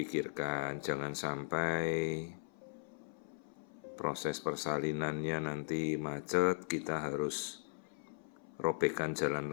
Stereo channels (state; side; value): silent; right; 52 dB below the other